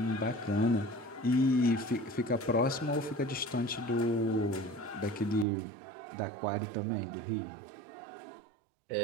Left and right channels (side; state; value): left; drops out; at 5.5 s